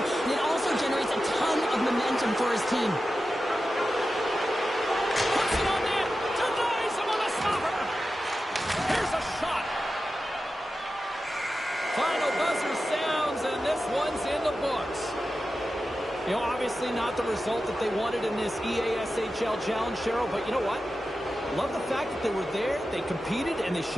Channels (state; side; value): normal; both; correlation 0.92